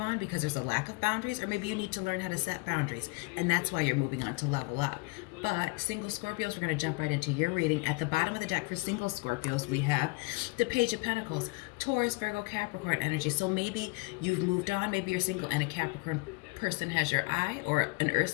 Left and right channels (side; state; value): right; quieter; 28.4 dB